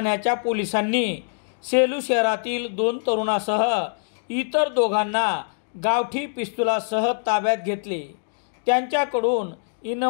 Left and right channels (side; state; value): right; silent; digital silence